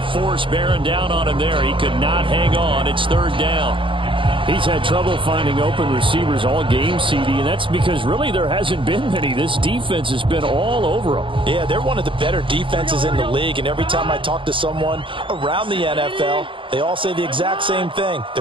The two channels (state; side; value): late; left; 0.25 ms